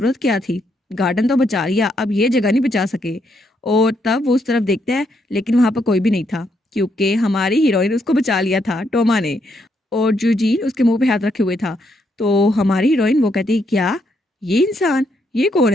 क्या थी, गार्डन तो बचा लिया, अब ये जगह नहीं बचा सके। और तब वो उस तरफ देखता है लेकिन वहाँ पर कोई भी नहीं था, क्योंकि हमारी हीरोइन उसको बचा लिया था टोमा ने, और जूजीन उसके मुंह पे हाथ रखे हुए था। तो हमारी हीरोइन वो कहती है क्या, ये इंसान, ये कौन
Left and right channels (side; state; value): both; normal; correlation 0.76